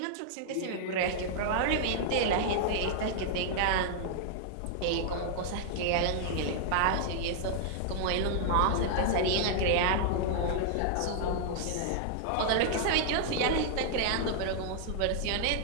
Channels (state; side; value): different; both; correlation -0.01